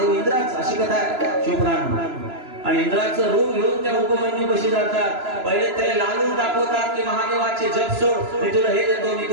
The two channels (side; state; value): left; late; 2.9 ms